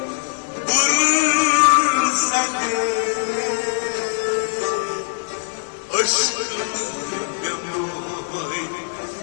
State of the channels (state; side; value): silent; right; digital silence